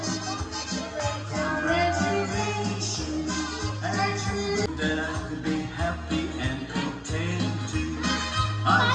That I could be happy and content too. I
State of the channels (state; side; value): identical; both; correlation 1.00